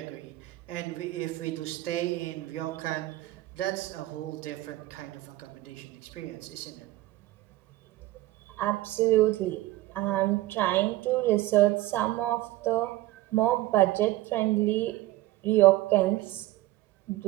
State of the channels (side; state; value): left; quieter; 17.0 dB